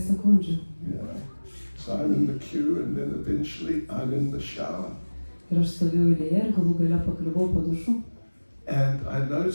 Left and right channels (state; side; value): inverted; both; correlation -1.00